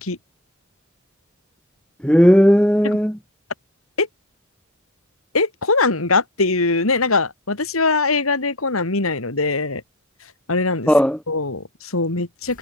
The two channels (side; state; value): both; normal; correlation 0.33